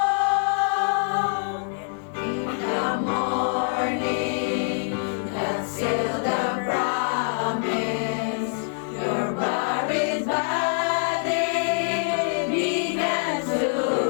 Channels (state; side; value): silent; right; digital silence